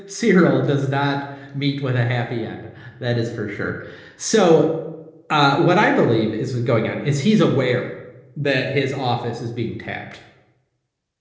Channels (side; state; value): both; identical; correlation 1.00